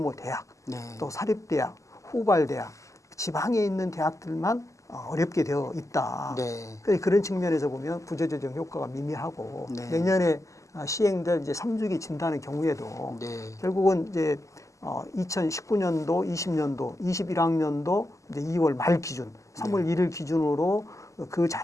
대학, 네. 또 사립대학, 후발대학, 지방에 있는 대학들만 어렵게 되어 있다. 네. 그래서 그런 측면에서 보면 구조조정 효과가 미미하고 네. 내년에 시행될 이제 3주기 진단의 경우에도 네. 결국은 이제 2019년도, 20년도, 21학년도 이제 2월 말 기준, 3월 1일 기준으로 그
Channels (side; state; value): right; late; 0.16 ms